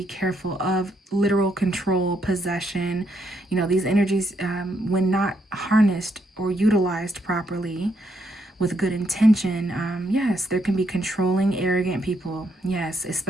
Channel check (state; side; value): normal; both; correlation 0.75